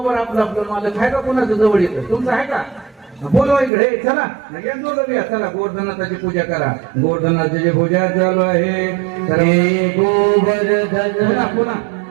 आपलं मालक आहे का, कोणाचं जवळ येतं, तुमचं आहे का? बोलवा इकडे, चला चला गोवर्धननाथाची पूजा करा. गोवर्धननाथाची पूजा चालू आहे. गोवर्धन पुन्हा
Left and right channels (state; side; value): drops out; left; at 3.7 s